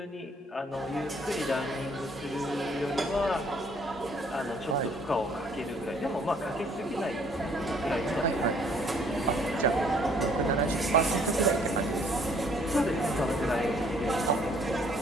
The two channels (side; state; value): both; normal; correlation 0.61